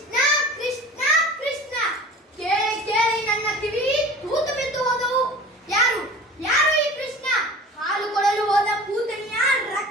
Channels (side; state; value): both; normal; correlation 0.41